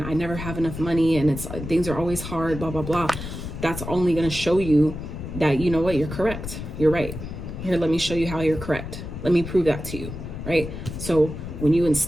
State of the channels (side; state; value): left; noise; rumble, 8 dB below the sound